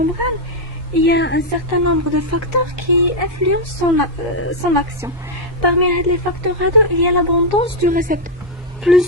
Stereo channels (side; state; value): both; normal; correlation 0.00